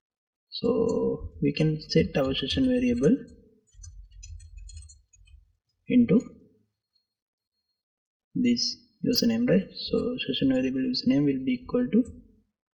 So we can set our session variable into this username, right? So session variable username will be equal to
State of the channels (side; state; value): both; identical; correlation 1.00